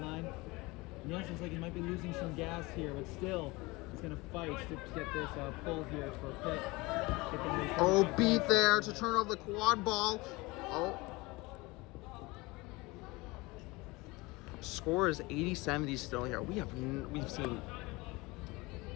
And it looks like he might be losing some gas here, but still, he's going to fight to get this pull here for Pitt. Oh, beat there to turn over the quad ball. Oh. Score is 80-70 still here. We've seen.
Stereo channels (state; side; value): quieter; right; 23.3 dB